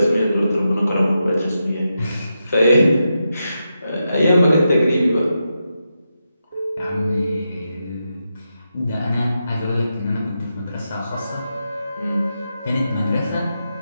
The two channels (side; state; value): both; inverted; correlation -0.87